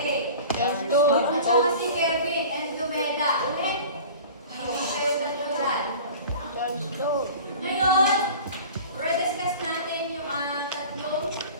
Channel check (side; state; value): both; inverted; correlation -0.40